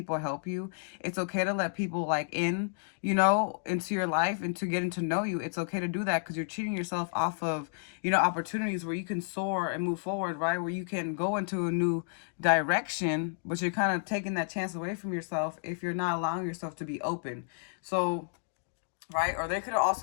help you. It's okay to let people like in, into your life and to getting to know you. It's okay to do that because you're cheating yourself off of, opportunities where you can soar and move forward, right? Where you can go into a new direction, but you're kind of taking that chance away from yourself if you're not allowing yourself to be open. So, right? Or there could have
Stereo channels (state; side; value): silent; right; digital silence